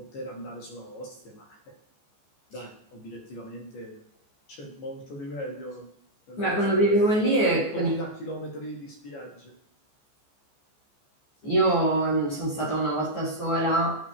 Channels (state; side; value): late; right; 14 ms